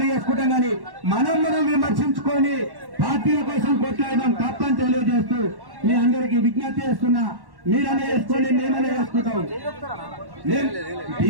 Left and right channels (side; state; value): left; late; 1.1 ms